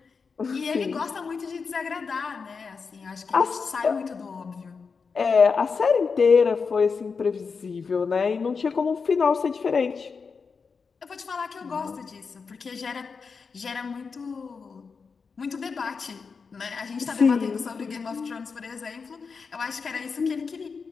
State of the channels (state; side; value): quieter; right; 5.2 dB